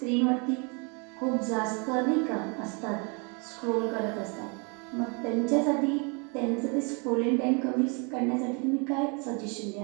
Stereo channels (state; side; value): quieter; left; 33.5 dB